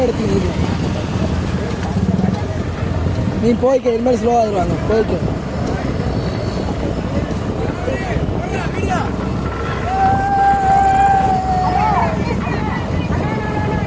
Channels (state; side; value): identical; both; correlation 1.00